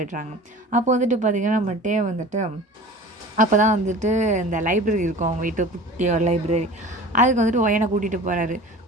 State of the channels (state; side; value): normal; both; correlation 0.40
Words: அப்போ வந்துட்டு பார்த்திங்கன்னா நம்மகிட்டே வந்துட்டு அப்போ தான் வந்துட்டு இந்த லைப்ரரி இருக்கும் அவங்க வீட்டு குட்டி ஒரு லைப்ரரி, அதுக்கு வந்துட்டு ஒயனை கூட்டிகிட்டு போகிறாரு.